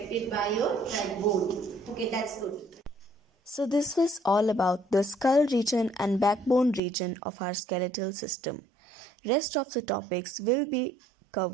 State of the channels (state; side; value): drops out; left; at 6.8 s